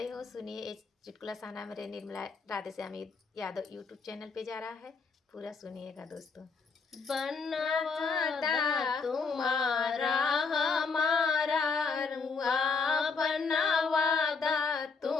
हूँ। सुनिए, इस चुटकुला सहाना मेरे निर्मला राधेश्यामी यादव यूट्यूब चैनल पे जा रहा है। पूरा सुनिएगा दोस्तों। बनवादा तुम्हारा हमारा रुआ, बनवादा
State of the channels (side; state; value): right; quieter; 4.9 dB